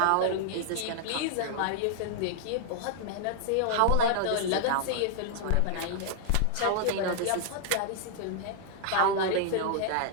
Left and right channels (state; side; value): different; both; correlation -0.01